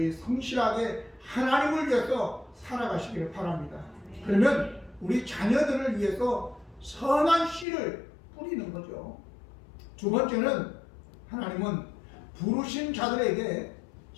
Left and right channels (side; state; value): right; drops out; at 7.7 s